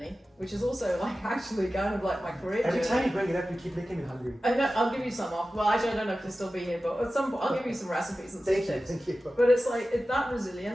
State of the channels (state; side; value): normal; both; correlation 0.95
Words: which is also like actually kind of like my career Every journey. time you bring it up, you keep making me hungry. I know, I'll give you some off. Well, actually, I don't know if you'll still be here, but at some point, I'll give you some recipes and some tips. Thank you. But it's like that